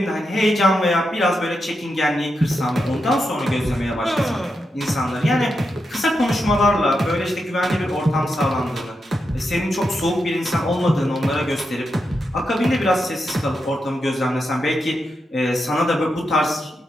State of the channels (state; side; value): normal; both; correlation 0.86